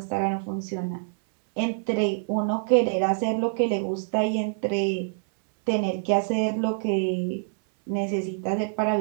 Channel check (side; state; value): left; silent; 61 dB below the other